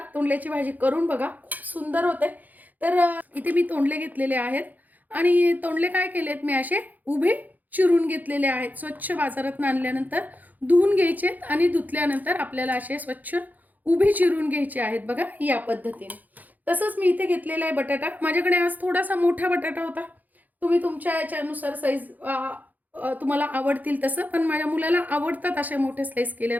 तोंडल्याची भाजी करून बघा, खूप सुंदर होते. तर इथे मी तोंडले घेतलेले आहेत आणि तोंडले काय केलेत मी असे उभे चिरून घेतलेले आहेत. स्वच्छ बाजारात आणल्यानंतर धुवून घ्यायचे आणि धुतल्यानंतर आपल्याला असे स्वच्छ उभे चिरून घ्यायचे आहेत बघा, या पद्धतीने. तसंच मी इथे घेतलेला आहे बटाटा. माझ्याकडे आज थोडासा मोठा बटाटा होता. तुम्ही तुमच्या याच्यानुसार साईज तुम्हाला आवडतील तसं, पण माझ्या मुलाला आवडतात अशा मोठे स्लाइस केल्या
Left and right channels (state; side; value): late; left; 0.082 ms